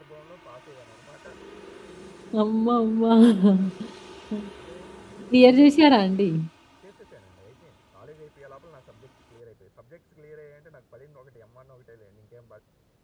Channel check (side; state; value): both; identical; correlation 1.00